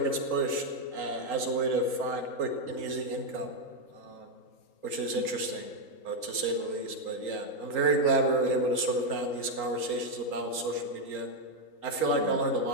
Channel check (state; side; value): late; right; 3.8 ms